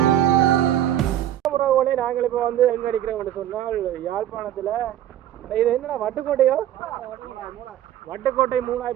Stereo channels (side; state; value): left; quieter; 11.7 dB